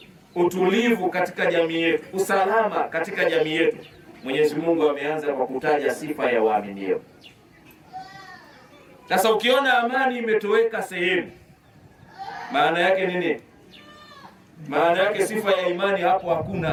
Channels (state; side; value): identical; both; correlation 1.00